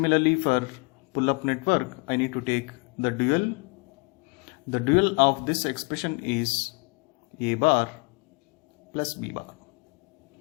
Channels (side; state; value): right; quieter; 30.6 dB